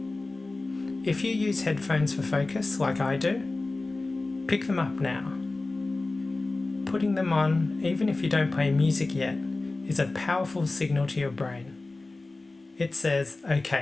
If you use headphones for focus, like I do, pick them up now. Putting them on, even if you don't play music yet, is a powerful signal to your brain. It says,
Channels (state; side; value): quieter; right; 3.3 dB